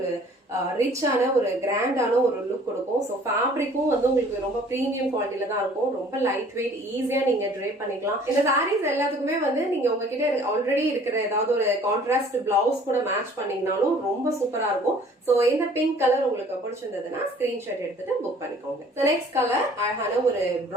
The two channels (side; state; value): both; normal; correlation 0.53